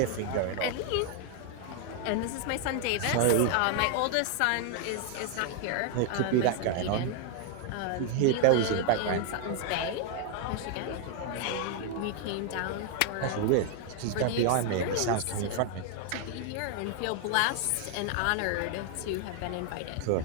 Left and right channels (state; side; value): different; both; correlation 0.00